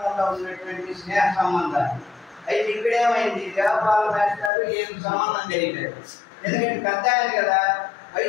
ఉన్నటువంటి స్నేహ సంబంధాలు. అయితే ఇక్కడేమైంది, దేవపాల మాస్టారు ఏం సంబంధం తెలియలేదు. ఎందుకంటే పెద్ద ఆయన కదా,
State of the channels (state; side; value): drops out; right; at 4.5 s